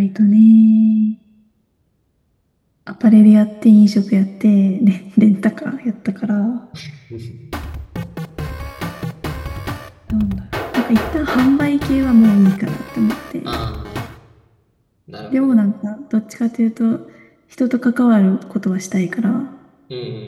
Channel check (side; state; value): both; identical; correlation 1.00